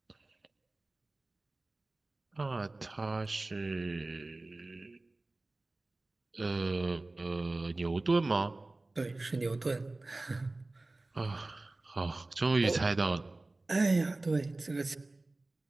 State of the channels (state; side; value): quieter; left; 3.0 dB